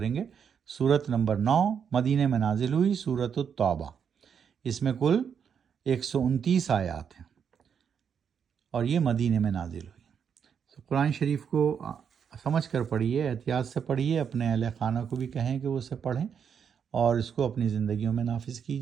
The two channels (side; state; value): left; quieter; 7.4 dB